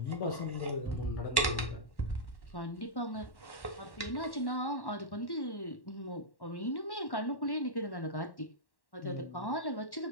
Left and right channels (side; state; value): right; late; 1.1 ms